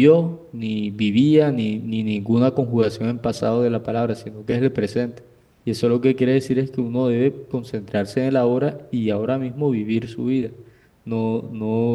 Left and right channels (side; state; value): both; identical; correlation 1.00